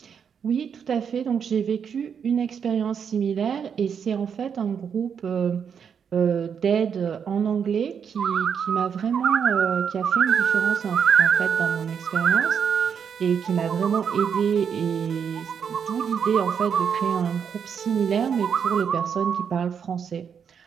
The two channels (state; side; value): quieter; left; 7.2 dB